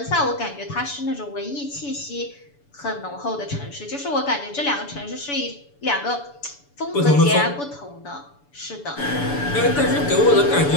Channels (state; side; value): late; right; 6.9 ms